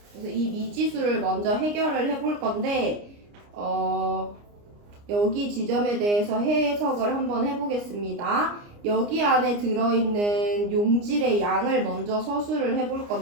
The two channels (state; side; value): late; left; 29 ms